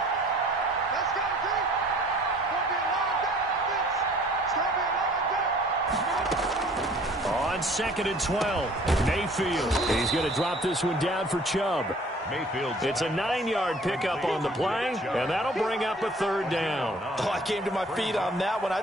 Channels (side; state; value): both; normal; correlation 0.53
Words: On 2nd and 12, Mayfield. He's going to drop this one down for Chubb. Mayfield. It's a 9-yard pickup on the play, and that'll bring up a 3rd down. Oh, I came to my feet on that one. I